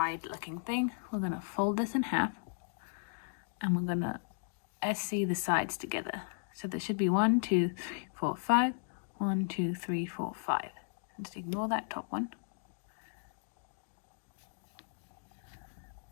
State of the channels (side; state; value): right; silent; digital silence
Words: looking thing. We're going to fold this in half and we're going to SC the sides together. So there should be 1, 2, 3, 4, 5, 1, 2, 3, 4, 5. Just ignore that top one.